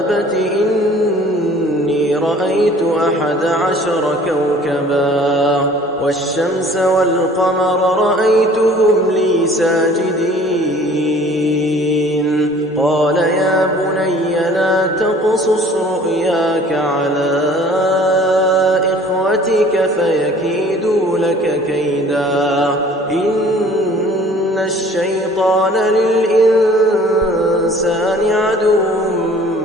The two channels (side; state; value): both; normal; correlation 0.51